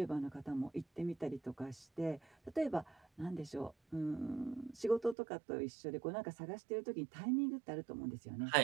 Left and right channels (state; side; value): drops out; left; at 5.2 s